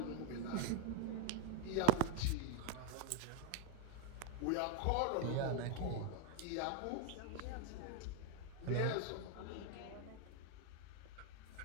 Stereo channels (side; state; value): both; different; correlation 0.00